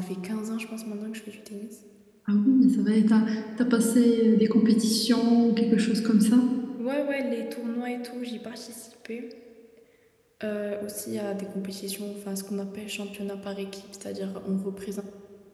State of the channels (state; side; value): identical; both; correlation 1.00